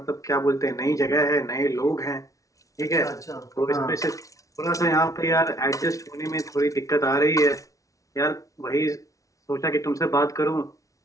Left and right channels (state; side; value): late; right; 0.16 ms